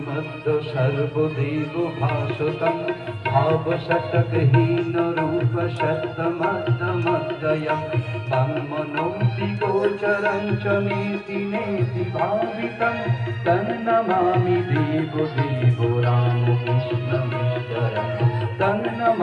সর্বদেব ভাসতং ভাবশতকহীন রূপ শতমদ্যমদ্বয়ং তন্মনোতি গোচরং চ নেতি নেতি ভাবিতং তন্নমামি দেব দেব রামকৃষ্ণমীশ্বরং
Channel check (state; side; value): identical; both; correlation 1.00